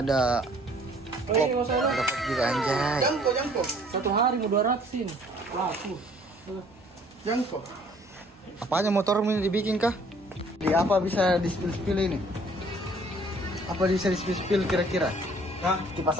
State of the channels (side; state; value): both; normal; correlation 0.57